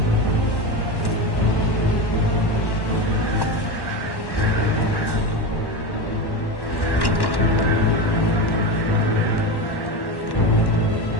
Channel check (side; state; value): right; late; 1.1 ms